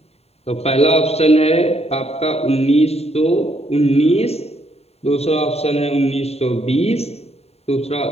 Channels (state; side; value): late; right; 0.30 ms